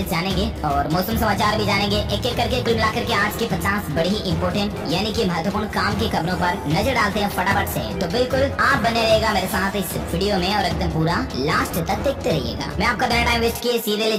जानेंगे और मौसम समाचार भी जानेंगे। एक एक करके कुल मिलाकर के आज की 50 बड़ी ही इंपोर्टेंट यानी कि महत्वपूर्ण काम की खबरों पर नजर डालते हैं फटाफट से। तो बिल्कुल आप बने रहेगा मेरे साथ इस वीडियो में और एकदम पूरा लास्ट तक देखते रहिएगा। मैं आपका बिना टाइम वेस्ट किए सीधे ले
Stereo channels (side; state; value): both; identical; correlation 1.00